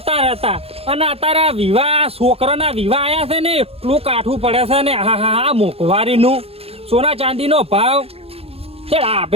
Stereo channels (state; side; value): late; left; 0.29 ms